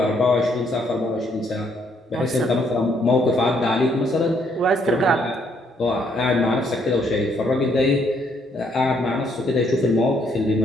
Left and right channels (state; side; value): normal; both; correlation 0.70